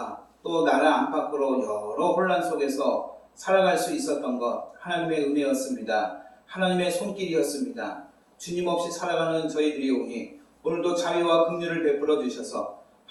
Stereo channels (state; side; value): identical; both; correlation 1.00